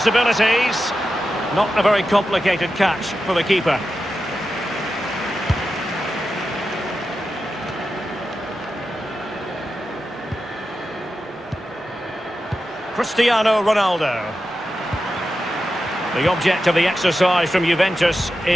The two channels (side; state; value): both; normal; correlation 0.91